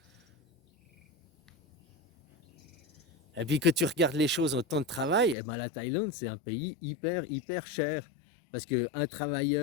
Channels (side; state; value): right; drops out; at 5.4 s